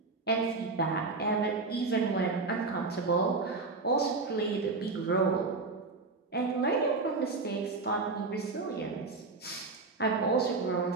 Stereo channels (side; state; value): left; quieter; 3.9 dB